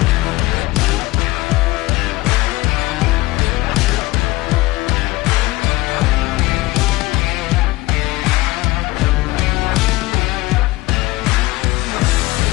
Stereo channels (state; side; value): quieter; right; 20.1 dB